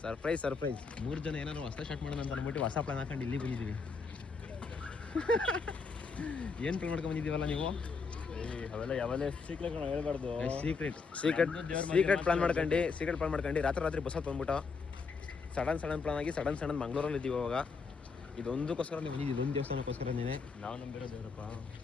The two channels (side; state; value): right; quieter; 4.8 dB